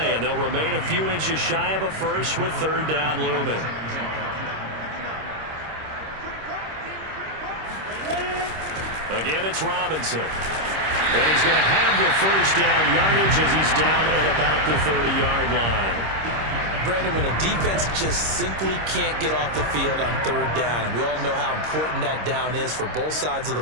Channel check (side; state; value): left; late; 26 ms